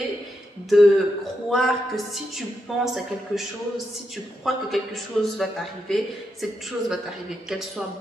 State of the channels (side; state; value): both; normal; correlation 0.84